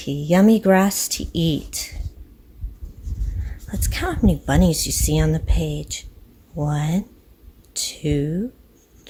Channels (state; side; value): identical; both; correlation 1.00